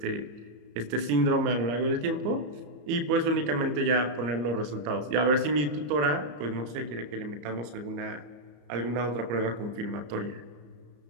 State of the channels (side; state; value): left; late; 34 ms